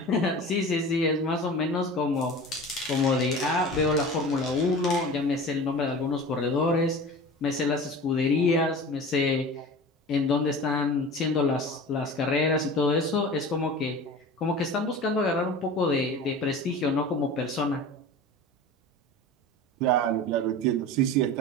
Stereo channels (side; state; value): both; normal; correlation 0.35